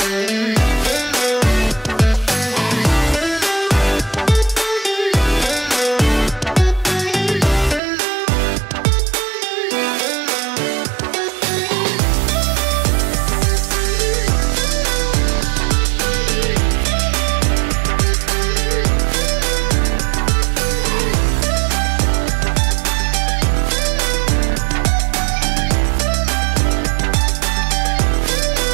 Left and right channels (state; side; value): drops out; left; at 7.8 s